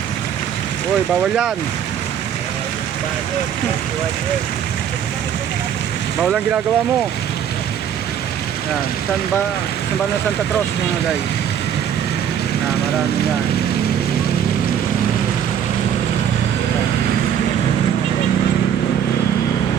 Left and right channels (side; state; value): left; quieter; 9.0 dB